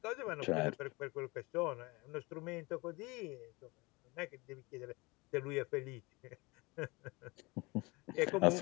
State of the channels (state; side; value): quieter; right; 25.0 dB